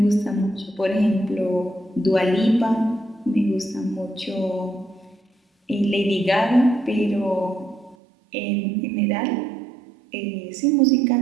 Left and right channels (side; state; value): left; drops out; at 8.0 s